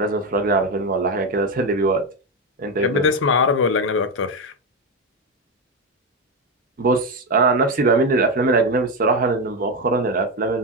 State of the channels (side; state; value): both; normal; correlation 0.11